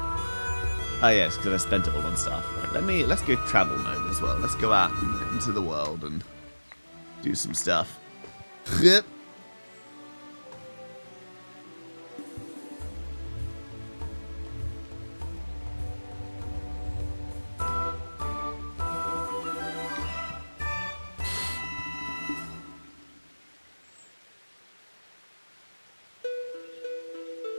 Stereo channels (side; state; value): both; inverted; correlation -1.00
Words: Oh yes, because I spent it all on stuff. Right, let's go travel mode as well. Let's go out into the world and do some stuff. Yep.